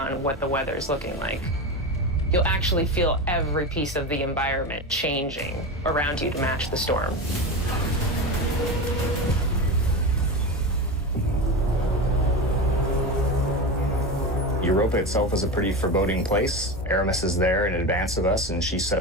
what the weather is looking like. You'll actually feel every piece of the environment changing around you to match the storm. Europa itself is a pretty foreboding place. Aramis is there in advance of us, and she set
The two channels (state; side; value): normal; both; correlation 0.22